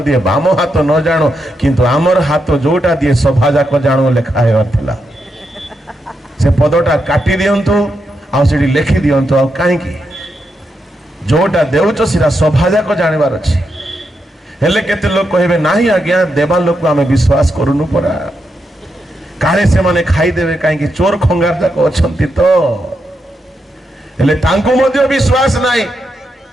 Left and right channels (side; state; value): both; normal; correlation 0.84